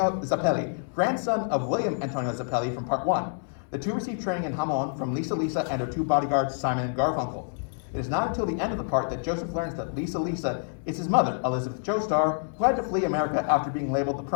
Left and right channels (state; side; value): silent; right; digital silence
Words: Zappelli, grandson of William Antonio Zappelli from part 1. The two receive training in Hamon from Lisa and her 2 bodyguards, Simon and Garfunkel. It is not until the end of the part that Joseph learns that Lisa is his mother, Elizabeth Joestar, who had to flee America after being labeled the